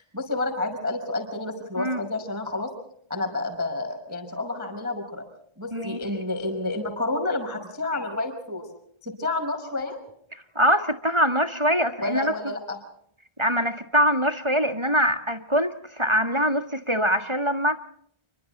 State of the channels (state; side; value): late; left; 1.4 ms